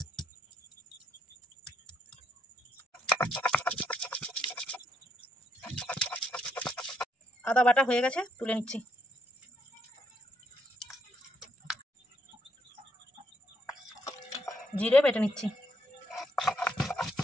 আদা বাটা হয়ে গেছে, তুলে নিচ্ছি। জিরে বেটে নিচ্ছি।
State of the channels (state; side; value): normal; both; correlation 0.76